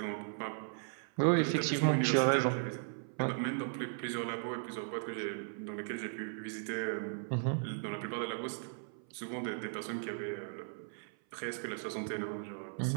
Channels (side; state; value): left; silent; 53 dB below the other